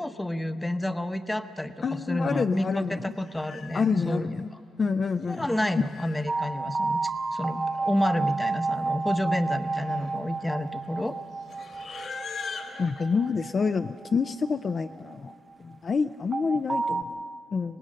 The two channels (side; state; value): both; normal; correlation 0.91